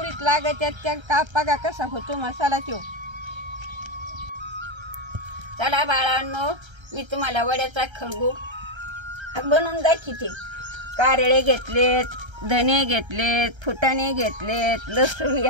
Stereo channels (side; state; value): left; late; 1.3 ms